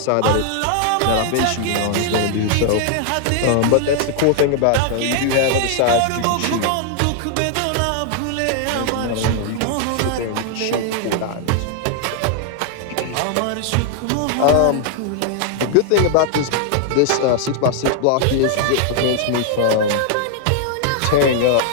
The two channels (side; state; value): both; different; correlation 0.00